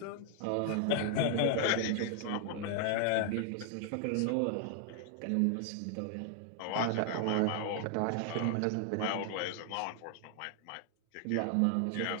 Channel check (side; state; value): both; different; correlation 0.00